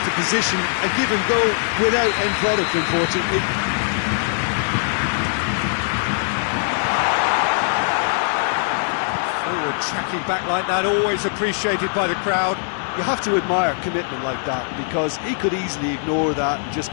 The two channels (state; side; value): silent; right; digital silence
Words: position. A given goal without end product, unfortunately. Forward tracking back like that, always appreciated by the crowd. You have to admire commitment like that, because he could easily ignore that and just